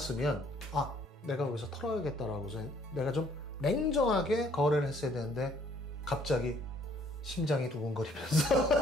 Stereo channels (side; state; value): both; normal; correlation 0.62